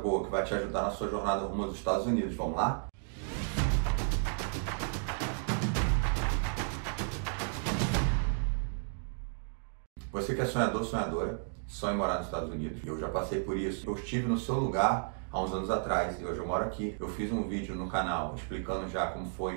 que vai te ajudar na sua jornada rumo aos Estados Unidos. Vamos lá? Você que é sonhador, sonhadora, sonha em morar nos Estados Unidos. Eu já passei por isso. Eu estive no seu lugar há uns anos atrás e hoje eu moro aqui. Eu fiz um vídeo no canal explicando já como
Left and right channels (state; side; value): silent; left; digital silence